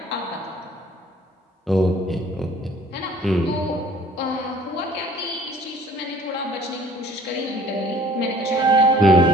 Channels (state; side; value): normal; both; correlation 0.53